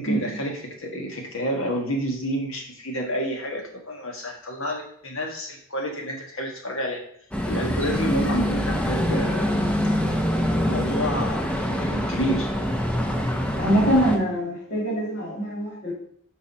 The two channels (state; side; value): normal; both; correlation 0.58